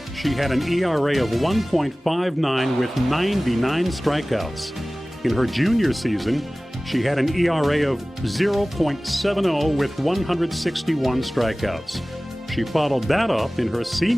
she had an ERA of 1.59 with 99 strikeouts. In her junior season, she had an ERA of 0.70 with 161 strikeouts. She followed that up in her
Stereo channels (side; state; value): both; normal; correlation 0.98